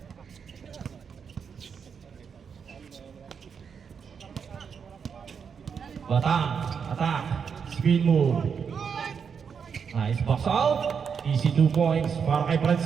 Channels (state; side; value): quieter; left; 6.6 dB